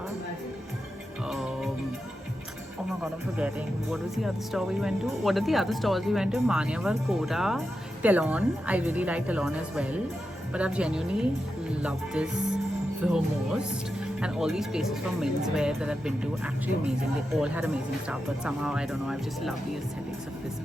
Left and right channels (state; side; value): normal; both; correlation 0.89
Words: oh my god, I'm forgetting. What was the other store we went to? What are the other stores we went to? Manyavar, Kora, Telon. I really like Telon as well. But I've genuinely loved this the most. And all these places for menswear that I've been to, actually amazing. They all had amazing stuff. But somehow, I don't know, I've just loved the aesthetics of this